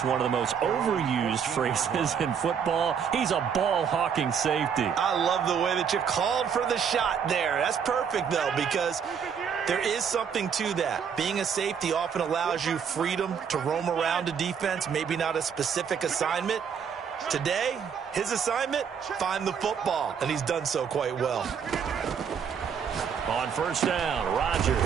one of the most overused phrases in football. He's a ball-hawking safety. I love the way that you called for the shot there. That's perfect, though, because there is something to that. Being a safety often allows you freedom to roam around a defense, maybe not a specific assignment. Today, his assignment, find the football, and he's done so quite well. On 1st down,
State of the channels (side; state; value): left; quieter; 7.2 dB